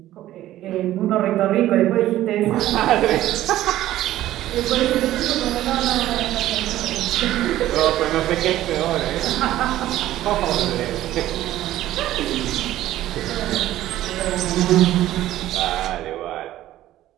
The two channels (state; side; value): quieter; left; 14.1 dB